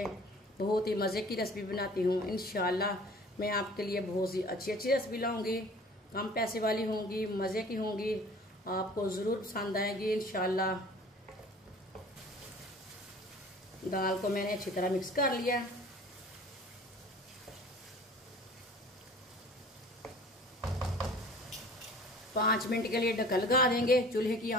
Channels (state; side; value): normal; both; correlation 0.47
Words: बहुत ही मजे की रेसिपी बनाती हूँ। इंशाल्लाह मैं आपके लिए बहुत सी अच्छी अच्छी रेसिपी लाऊंगी। कम पैसे वाली होंगी, मजे की होंगी, आपको जरूर पसंद आएगी इंशाल्लाह। दाल को मैंने अच्छी तरह मिक्स कर लिया। पांच मिनट के लिए ढक्कन लगा देंगे। चूल्हे की